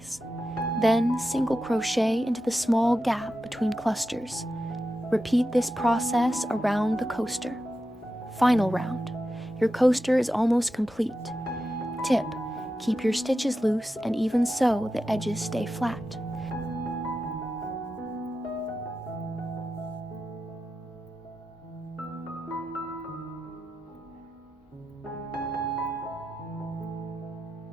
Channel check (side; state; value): both; normal; correlation 0.90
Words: Then single crochet into the small gap between clusters. Repeat this process around the coaster. Final round. Your coaster is almost complete. Tip: keep your stitches loose and even so the edges stay flat.